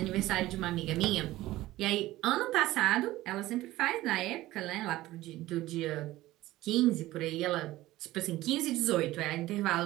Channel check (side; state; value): left; quieter; 16.7 dB